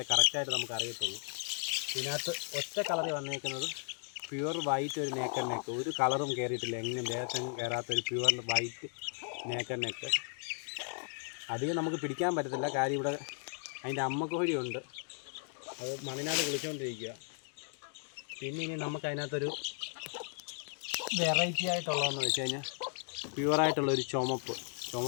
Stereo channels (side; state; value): right; silent; 54 dB below the other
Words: കറക്റ്റായിട്ട് നമുക്ക് അറിയത്തുള്ളൂ. ഇതിനകത്ത് ഒറ്റ കളറിൽ വന്നേക്കുന്നത് പ്യുവർ വൈറ്റ് ഒരു നേക്കർ നെക്ക്. ഒരു കളറും കയറിയിട്ടില്ല, എങ്ങും ദേഹത്തെങ്ങും കയറാത്തൊരു പ്യുവർ വൈറ്റ് നേക്കർ നെക്ക്. അധികം നമുക്ക് പിടിക്കാൻ പറ്റത്തില്ല, കാര്യം ഇവിടെ അതിൻ്റെ അമ്മക്കോഴിയുണ്ട്. അത് മണ്ണിനകത്ത് കുളിച്ചുകൊണ്ടിരിക്കുക. പിന്നെ ഇനി നമുക്കതിനകത്തൊരു വെറൈറ്റി ആയിട്ടുള്ളതെന്ന് വെച്ച് കഴിഞ്ഞാൽ പ്യുവറായിട്ടുള്ളൊരു